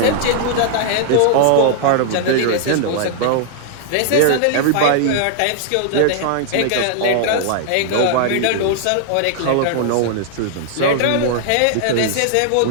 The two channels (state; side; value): different; both; correlation -0.01